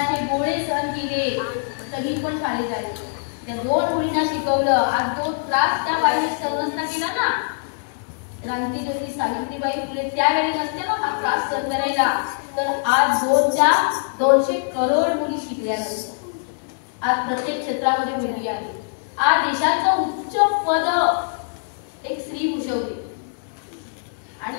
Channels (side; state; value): right; silent; digital silence